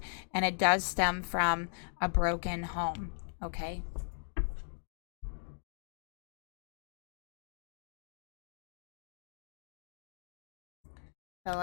and it does stem from a broken home, okay? So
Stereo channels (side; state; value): right; silent; digital silence